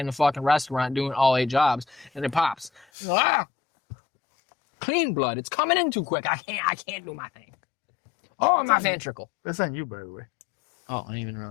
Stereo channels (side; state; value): right; drops out; at 2.9 s